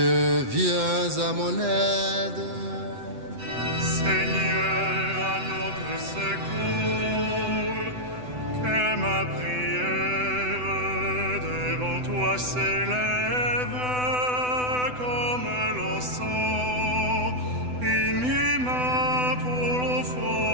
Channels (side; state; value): left; late; 8.0 ms